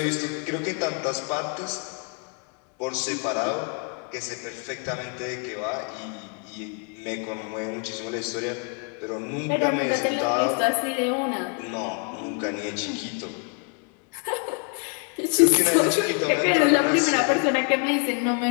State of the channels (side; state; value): right; quieter; 39.4 dB